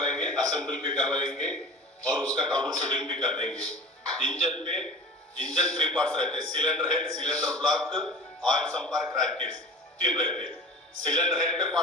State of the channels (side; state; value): both; normal; correlation 0.38